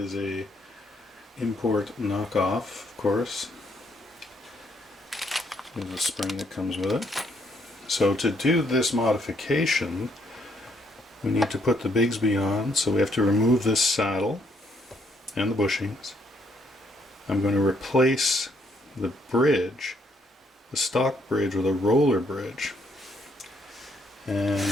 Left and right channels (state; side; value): normal; both; correlation 0.71